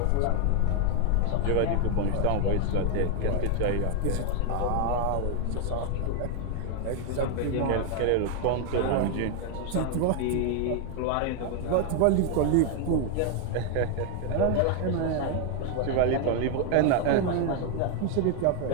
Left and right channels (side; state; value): both; different; correlation 0.01